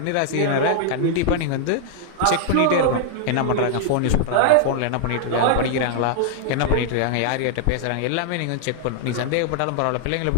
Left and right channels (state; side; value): different; both; correlation 0.00